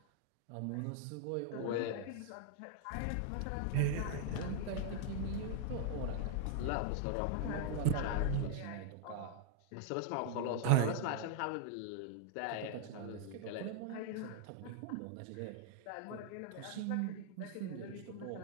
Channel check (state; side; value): different; both; correlation -0.01